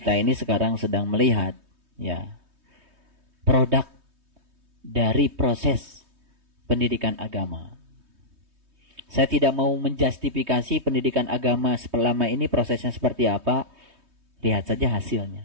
ini sekarang sedang melihat ya produk dari proses pendidikan agama. Saya tidak mau menjustifikasi pendidikan agama selama ini prosesnya seperti apa. Lihat saja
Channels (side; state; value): left; late; 3.2 ms